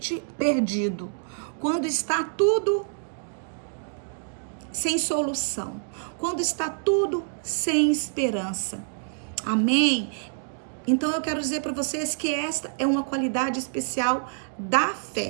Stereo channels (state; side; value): silent; left; digital silence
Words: perdido, quando está tudo sem solução, quando está tudo sem esperança. Amém? Então eu quero dizer para vocês que esta é uma qualidade especial da